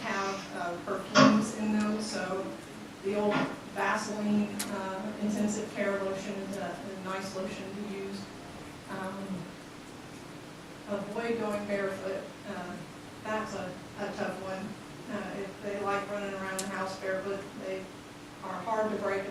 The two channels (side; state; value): both; identical; correlation 1.00